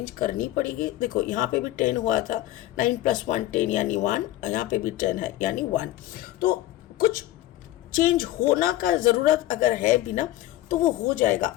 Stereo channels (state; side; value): quieter; right; 15.2 dB